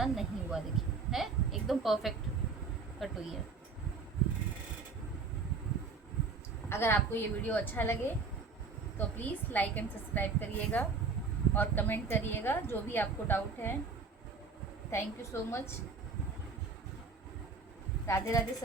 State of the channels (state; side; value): quieter; left; 4.6 dB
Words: नहीं हुआ, देखिए है एकदम परफेक्ट कट हुई है। अगर आपको ये वीडियो अच्छा लगे तो प्लीज़ लाइक एंड सब्सक्राइब करिएगा और कमेंट करिएगा जो भी आपको डाउट है। Thank you so much. Radhe Radhe